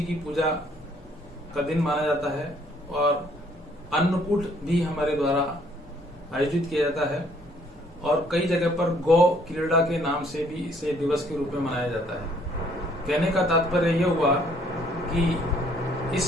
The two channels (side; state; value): both; normal; correlation 0.63